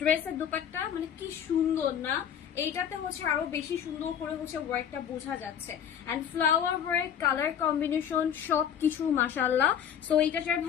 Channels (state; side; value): quieter; right; 8.8 dB